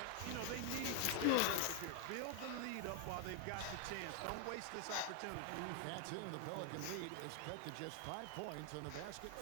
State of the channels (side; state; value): both; different; correlation 0.00